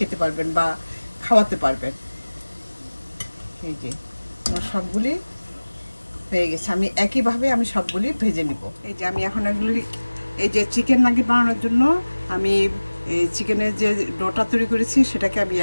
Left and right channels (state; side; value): inverted; both; correlation -1.00